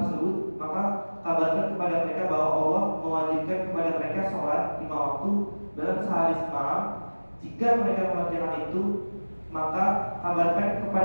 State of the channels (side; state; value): both; inverted; correlation -1.00